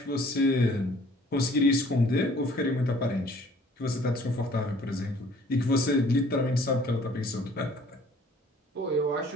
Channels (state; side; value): normal; both; correlation 0.55